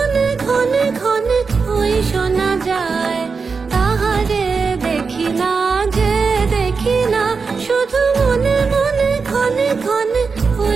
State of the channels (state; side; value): quieter; left; 4.9 dB